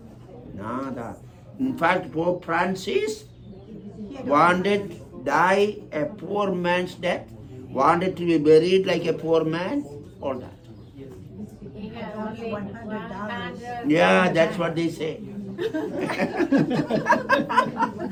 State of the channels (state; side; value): identical; both; correlation 1.00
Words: Nada. In fact, Pope Francis wanted die a poor man's death, wanted to be buried like a poor man, all that. He had only $100. Yeah, that's what they say.